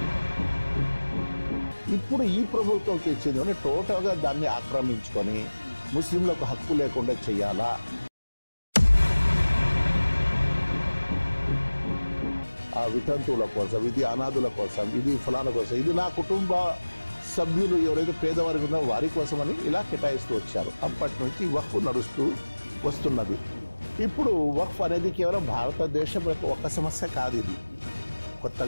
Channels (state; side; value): inverted; both; correlation -1.00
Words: ఇప్పుడు ఈ ప్రభుత్వం తెచ్చింది టోటల్గా దాన్ని ఆక్రమించుకొని ముస్లింలకు హక్కు లేకుండా చెయ్యాలా? ఆ వితంతువుల కోసం, ఇది అనాథుల కోసం, ఇది ఫలానా కోసం, ఇది నా కుటుంబ సభ్యులు ఎవరైతే పేదవారికి ఉన్నారో వారి కోసమని ఇలా కేటాయిస్తూ వచ్చారు. అప్పటి నుంచి వక్ఫ్ నడుస్తూ వస్తున్నది. ఇప్పుడు వక్ఫ్ అనేది కేవలం భారతదేశం యొక్క ఒక సమస్య కాదు. ఇది